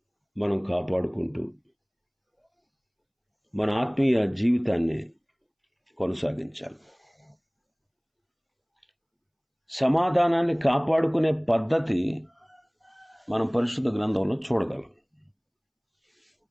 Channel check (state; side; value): identical; both; correlation 1.00